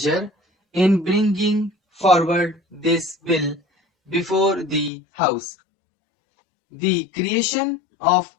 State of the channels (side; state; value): right; drops out; at 4.9 s